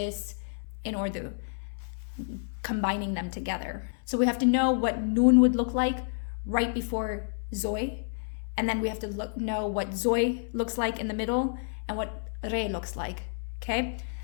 in Urdu? Combining them together. So we have to know what noon would look like right before zoy. And then we have to know what zoy looks like in the middle and what re looks like, okay?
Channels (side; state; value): right; silent; 58 dB below the other